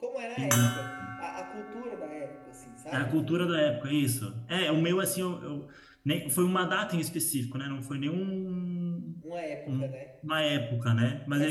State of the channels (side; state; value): both; identical; correlation 1.00